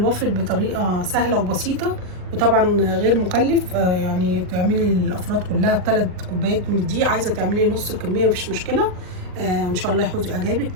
بطريقه سهله وبسيطه وطبعا غير مكلف. يعني تعملي الافراد كلها ب3 كوبايات من الدقيق. عايزه تعملي نص الكميه مفيش مشكله. ان شاء الله يحوز اعجابك.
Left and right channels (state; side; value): late; left; 39 ms